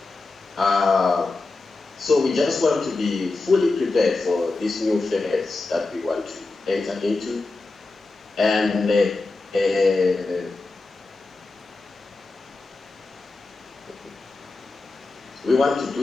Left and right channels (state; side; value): quieter; right; 3.5 dB